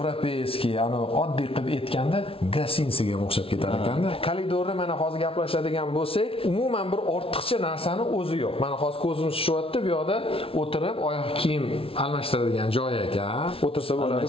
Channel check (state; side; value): late; right; 0.26 ms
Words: ana oddiy qilib aytganda gasinsiga o'xshab ketar ekanda. Koridorda mana hozir gaplashadigan bo'lsak, umuman bir ortiqcha narsani o'zi yo'q. Mana hozir ko'zimiz tushyapti, bu yoqda o'tirib oyoq kiyim almashtiradigan joy ekan. O'tirsa